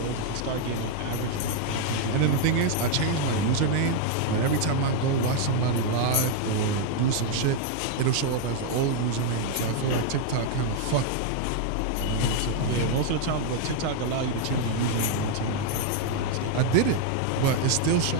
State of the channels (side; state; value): both; different; correlation 0.00